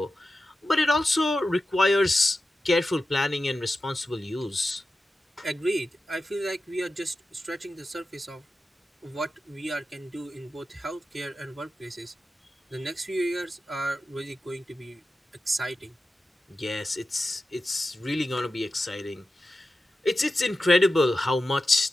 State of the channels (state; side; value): normal; both; correlation 0.92